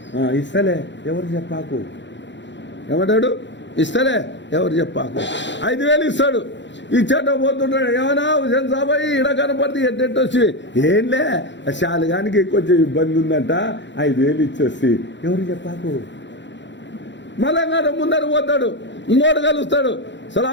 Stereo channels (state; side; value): late; right; 0.53 ms